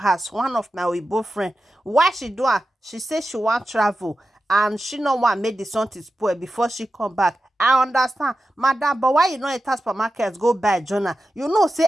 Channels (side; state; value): both; normal; correlation 0.92